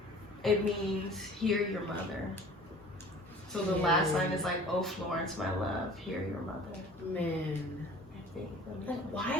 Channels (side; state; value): both; normal; correlation 0.46